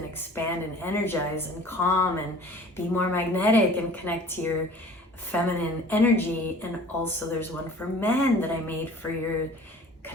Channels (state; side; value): normal; both; correlation 0.47